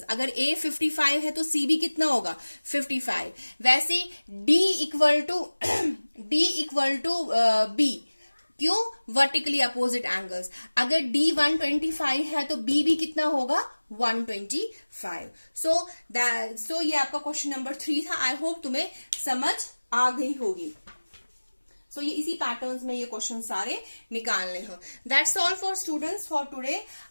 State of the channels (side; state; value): both; inverted; correlation -1.00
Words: अगर A 55 है तो C भी कितना होगा? 55। वैसे D इक्वल टू B। क्यों? Vertically opposite angles. अगर D 125 है तो B भी कितना होगा? 125। सो ये आपका क्वेश्चन नंबर 3 था। आई होप तुम्हें समझ आ गई होगी। सो ये इसी पैटर्न्स में ये क्वेश्चन सारे निकालने हो। That's all for students for today.